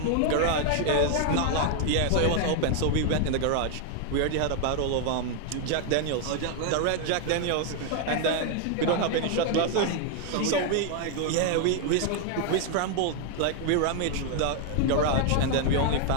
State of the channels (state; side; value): different; both; correlation 0.00